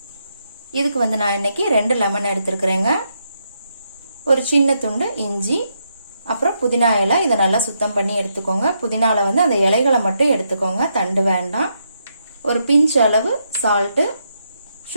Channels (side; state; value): both; inverted; correlation -0.80